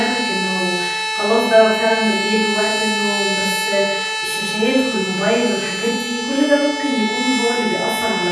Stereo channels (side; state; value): both; identical; correlation 1.00